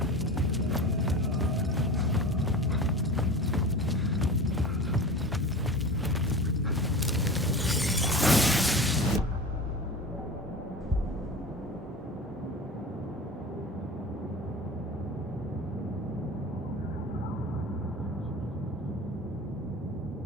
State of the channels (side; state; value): both; normal; correlation 0.33